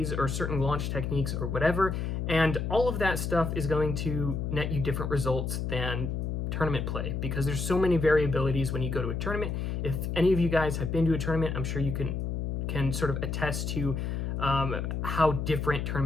or certain launch techniques or whatever. And all of that stuff is going to net you different results than tournament play, because there's so many variabilities when you go to a tournament. If any of you guys have been to a tournament, I'm sure you can sort of attest to how different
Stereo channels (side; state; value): left; noise; hum, 2 dB below the sound